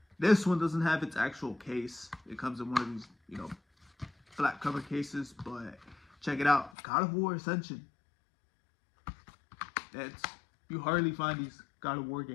This one doesn't have its actual case. It comes in one of these, you know, flat cover cases. But check it out. God of War Ascension. You hardly find these God of War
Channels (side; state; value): right; drops out; at 6.7 s